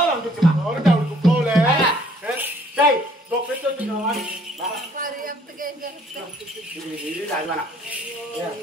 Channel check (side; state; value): both; normal; correlation 0.60